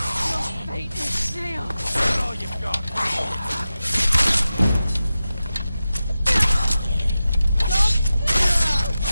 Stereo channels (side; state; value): both; inverted; correlation -0.93